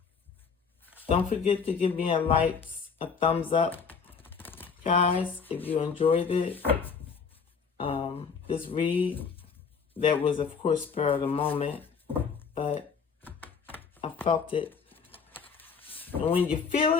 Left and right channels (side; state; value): right; quieter; 5.9 dB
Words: Don't forget to give me a like, a thumbs up, guys, if you enjoyed it. This read, that was, of course, spur of the moment, but I felt it. And when you feel